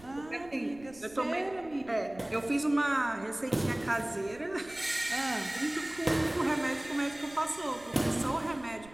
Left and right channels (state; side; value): noise; right; rumble, 22 dB below the sound